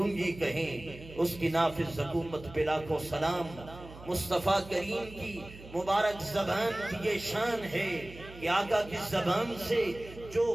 کہیں، اس کی نافذ حکومت پہ لاکھوں سلام۔ مصطفیٰ کریم کی مبارک زبان کی یہ شان ہے کہ آقا کی زبان سے جو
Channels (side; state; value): right; noise; hum, 17 dB below the sound